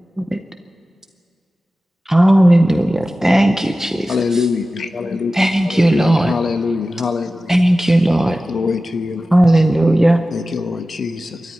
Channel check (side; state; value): both; normal; correlation 0.95